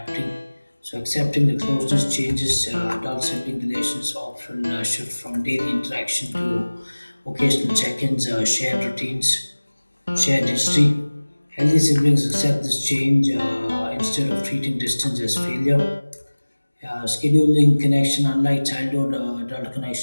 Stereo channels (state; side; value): inverted; both; correlation -1.00